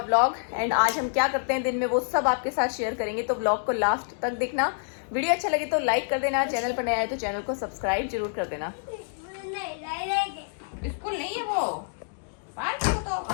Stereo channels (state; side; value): silent; right; digital silence